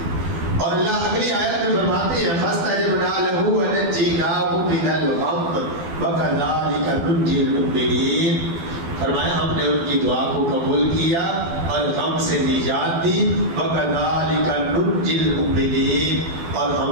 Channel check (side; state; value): left; late; 12 ms